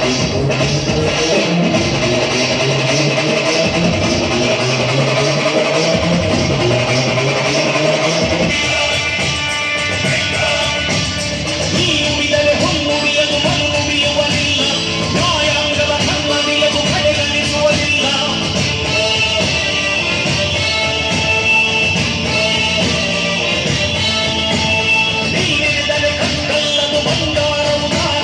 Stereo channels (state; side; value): identical; both; correlation 1.00